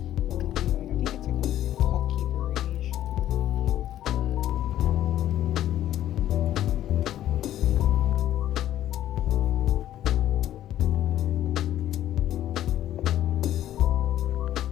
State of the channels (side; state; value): right; quieter; 12.4 dB